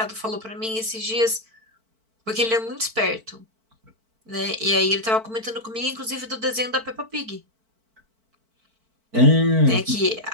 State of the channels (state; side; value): late; left; 4.5 ms